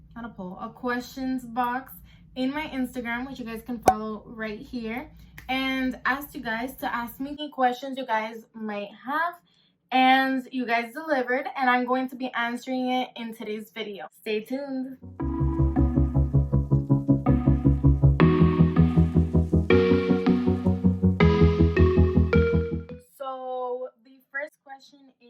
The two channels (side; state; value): both; identical; correlation 1.00